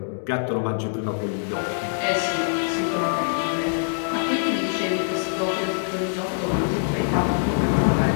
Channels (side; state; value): right; silent; digital silence